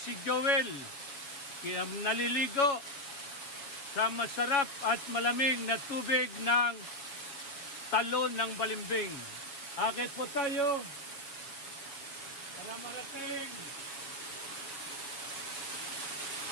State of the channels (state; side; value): late; right; 7.2 ms